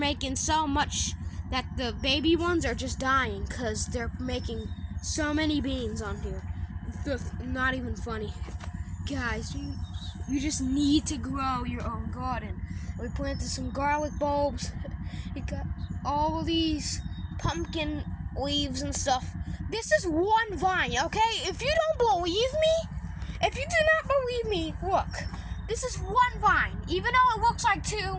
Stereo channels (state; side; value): identical; both; correlation 1.00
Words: so much that the baby ones are just dying because they're making so many beans on here. It's not even funny. Guys, you just need to grow your own garden. We planted some garlic bulbs. We got all these pumpkin leaves and stuff. This is one vine, okay? If you don't believe me, if you do not believe me, look. This is one vine. Even though it looks like